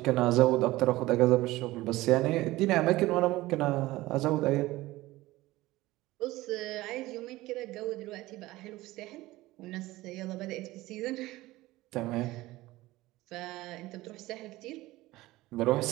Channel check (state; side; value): quieter; left; 18.3 dB